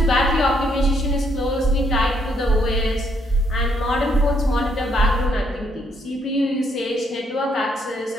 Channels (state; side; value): normal; both; correlation 0.72